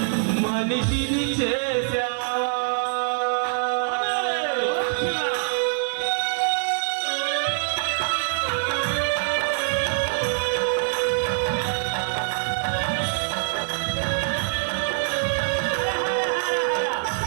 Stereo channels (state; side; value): silent; left; digital silence